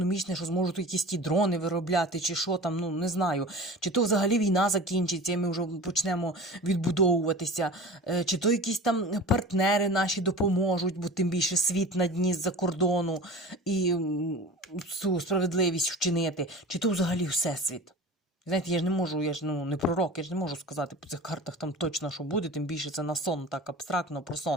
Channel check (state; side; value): normal; both; correlation 0.36